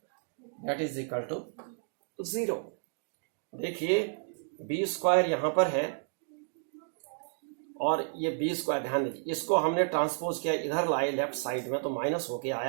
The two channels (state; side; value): silent; left; digital silence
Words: that is equal to 0. देखिए B square यहाँ पर है और ये B square, ध्यान दीजिए, इसको हमने ट्रांसपोज किया, इधर लाए लेफ्ट साइड में तो माइनस होके